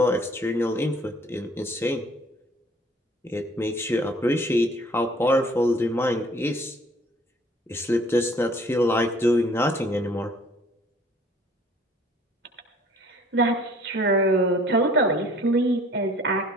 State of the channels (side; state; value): both; normal; correlation 0.55